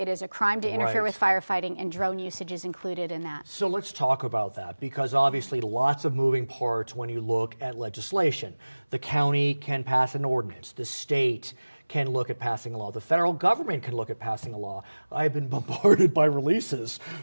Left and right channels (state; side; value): inverted; both; correlation -1.00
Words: is a crime to interfere with firefighting, and drone usage is included in that. So let's talk about that, because obviously lots of moving parts when you look at legislation. The county can pass an ordinance. The state can look at passing a law. The federal government can look at passing a law. I've been bombarded by releases